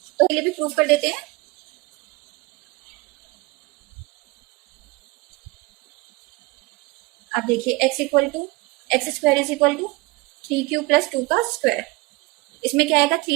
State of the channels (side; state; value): left; quieter; 22.9 dB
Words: तो ये भी प्रूफ कर देते हैं। आप देखिए x equal to x square is equal to 3q plus 2 का स्क्वायर, इसमें क्या आएगा